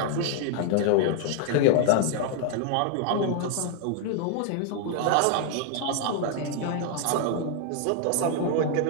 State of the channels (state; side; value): different; both; correlation 0.00